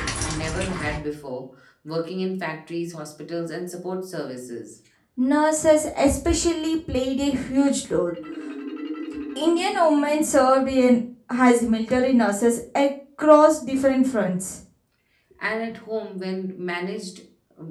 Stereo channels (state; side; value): identical; both; correlation 1.00